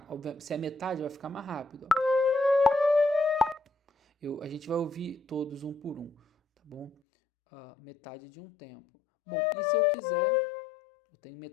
obviamente, se é metade, vai ficar mais rápido. A gente vai ouvir todos um por um, tá bom? Metade de um tempo. Bom, e se eu quiser, eu tenho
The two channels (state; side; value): drops out; right; at 7.0 s